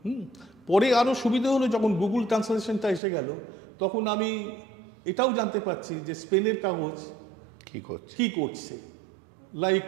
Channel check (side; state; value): left; drops out; at 3.0 s